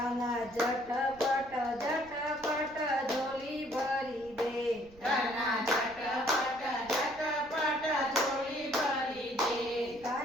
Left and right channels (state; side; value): noise; right; rumble, 23 dB below the sound